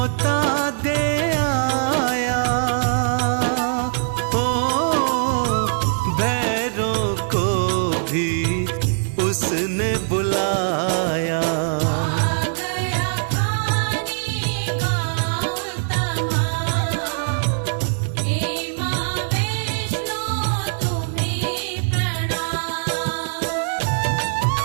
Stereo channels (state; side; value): silent; left; digital silence